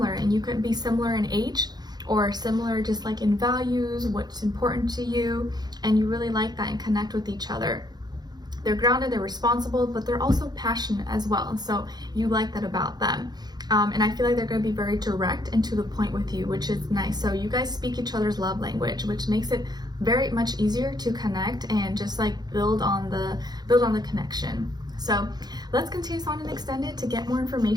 and you could be similar in age, or similar just like in values, what's important to you, and you really like that and connect with each other. They're grounded, they're responsible, but they're also passionate as well. So you like that about them. And I feel like they're going to be very direct and to the point with you, which is nice. So you guys speak each other's love language, which makes it very much easier to connect and just like build on the connection. So let's continue on and extend it to get more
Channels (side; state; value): left; late; 0.20 ms